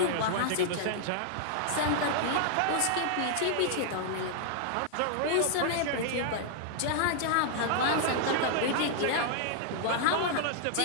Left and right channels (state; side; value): different; both; correlation -0.01